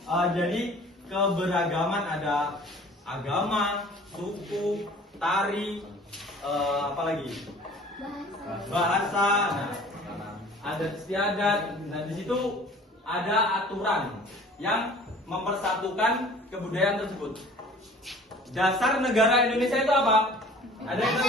Jadi keberagaman ada agama, suku, tari, apalagi bahasa, nah, adat istiadat. Nah di situ ada aturan yang mempersatukan kebudayaan tersebut. Dasar negara Indonesia itu apa? Ada yang tahu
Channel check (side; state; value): both; normal; correlation 0.48